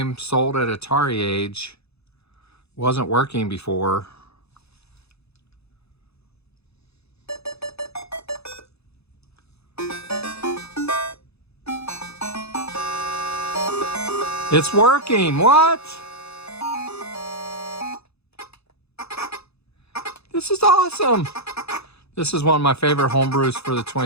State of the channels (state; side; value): late; right; 0.79 ms